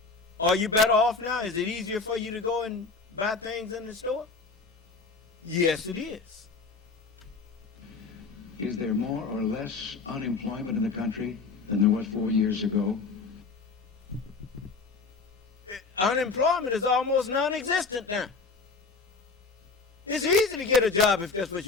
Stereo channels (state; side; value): quieter; right; 4.4 dB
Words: Are you better off now? Is it easier for you to go and buy things in the store? Yes, it is. Is there more or less unemployment in the country than there was 4 years ago? Unemployment is almost non-existent now. It's easy to get a job if that's what